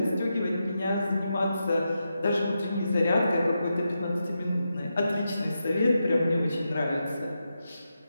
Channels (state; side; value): inverted; both; correlation -0.87